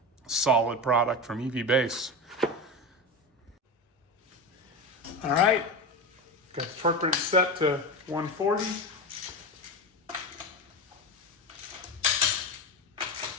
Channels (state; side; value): normal; both; correlation 0.21